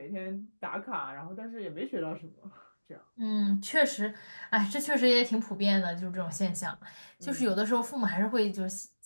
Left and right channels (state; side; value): inverted; both; correlation -1.00